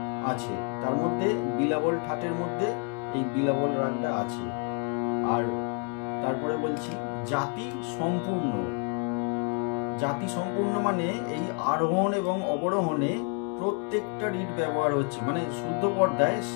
আছে, তার মধ্যে বিলাবল ঠাটের মধ্যে এই বিলাবল রাগটা আছে। আর তারপরে বলছি জাতি সম্পূর্ণ। জাতি সম্পূর্ণ মানে এই আরোহণ এবং অবরোহণে প্রত্যেকটা রিড ব্যবহার হচ্ছে, মানে শুদ্ধ পর্দায়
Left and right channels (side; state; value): right; quieter; 38.0 dB